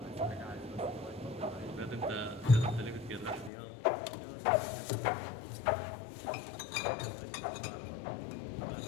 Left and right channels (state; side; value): drops out; right; at 3.5 s